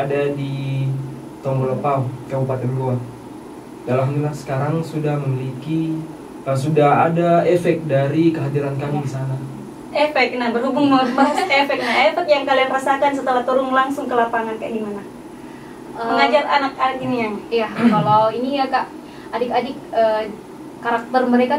di Tonggolopau, Kabupaten Goa. Alhamdulillah sekarang sudah memiliki sudah ada efek dari kehadiran kami di sana. Efek, nah berhubung membahas efek, nah efek yang kalian rasakan setelah turun langsung ke lapangan kayak gimana? Mengajar anak-anak ini yang? Iya, kalau ini ya Kak, adik-adik karakter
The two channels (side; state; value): both; identical; correlation 1.00